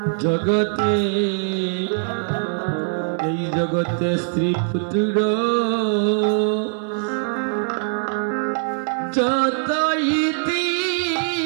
জগতে এই জগতে স্ত্রী পুত্র যত ইতি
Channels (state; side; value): silent; left; 64 dB below the other